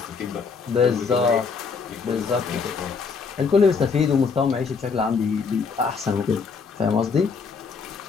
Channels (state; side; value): quieter; right; 5.3 dB